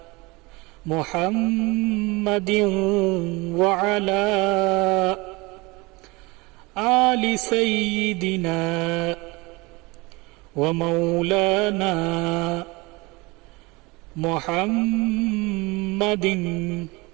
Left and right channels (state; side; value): quieter; left; 24.6 dB